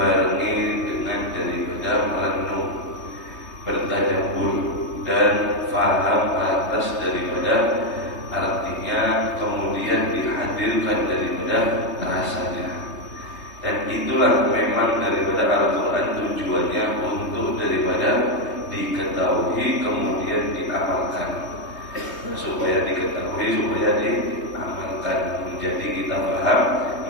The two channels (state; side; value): late; right; 3.2 ms